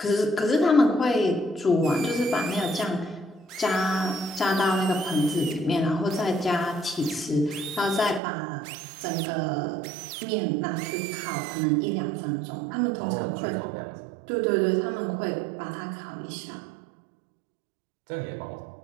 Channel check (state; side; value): drops out; left; at 8.2 s